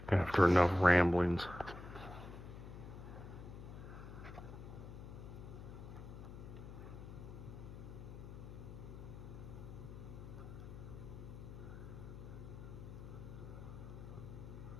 After enough ramblings.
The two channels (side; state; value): left; noise; hum, 11 dB below the sound